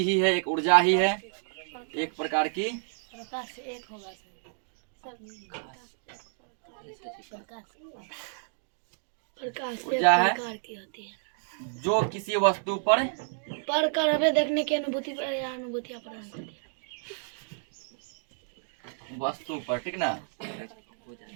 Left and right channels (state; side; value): silent; left; digital silence